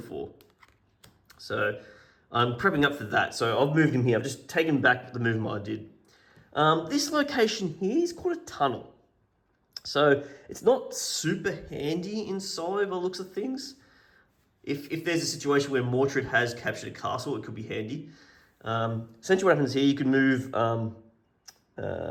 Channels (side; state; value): both; identical; correlation 1.00